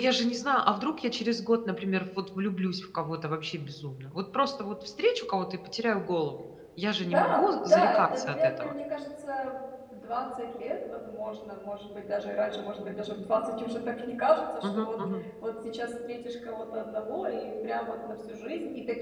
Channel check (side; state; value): both; identical; correlation 1.00